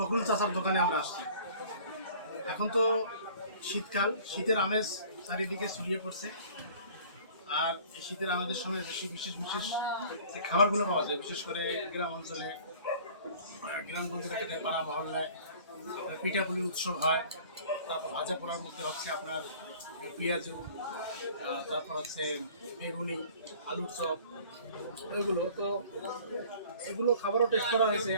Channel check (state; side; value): inverted; both; correlation -0.49